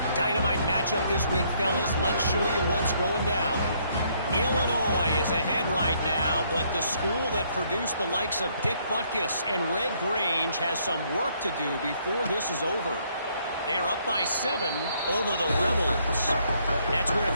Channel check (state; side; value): inverted; both; correlation -0.68